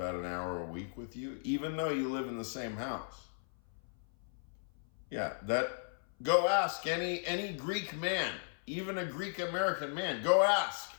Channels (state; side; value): silent; right; 54 dB below the other